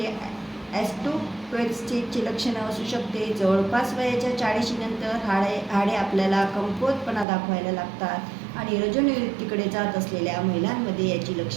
ऑस्टिओपेरोसिसची लक्षणं असू शकते. जवळपास वयाच्या 40 नंतर हाडे आपल्याला कमकुवतपणा दाखवायला लागतात आणि रजोनिवृत्तीकडे जात असलेल्या महिलांमध्ये याची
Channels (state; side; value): drops out; left; at 7.2 s